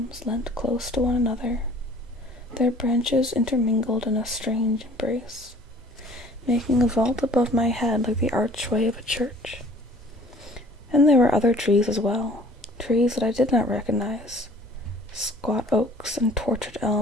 leant close to one another, their branches intermingled in a strange embrace, making a vault above my head like the archway of a church. And there were other trees as well, trees that I did not recognize, squat oaks and tortured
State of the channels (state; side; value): normal; both; correlation 0.52